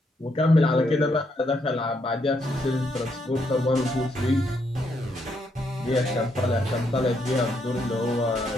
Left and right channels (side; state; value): both; normal; correlation 0.76